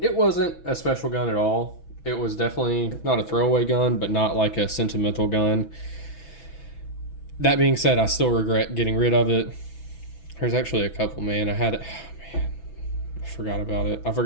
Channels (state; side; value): late; right; 6.1 ms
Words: wasn't a special gun at all. It was definitely not a throwaway gun, but not like a sentimental gun. That being said, I still regret getting rid of it. There's actually a couple, man. I forgot about it. I